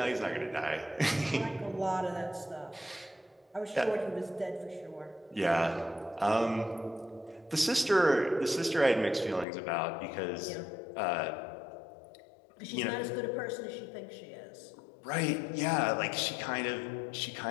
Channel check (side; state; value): right; drops out; at 9.5 s